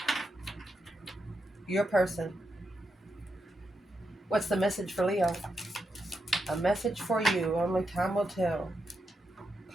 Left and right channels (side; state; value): both; normal; correlation 0.85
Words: Your person. What's the message for Leo? A message for you. Only time will tell.